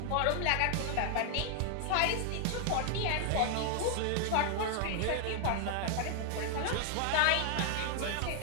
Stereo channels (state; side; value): different; both; correlation 0.00